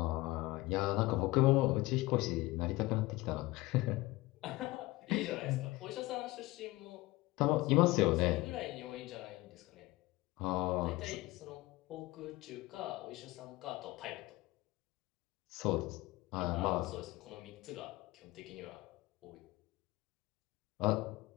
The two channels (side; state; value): right; quieter; 19.7 dB